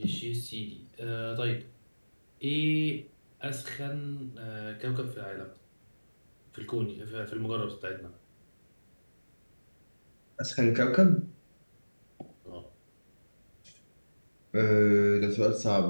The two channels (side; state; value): both; inverted; correlation -1.00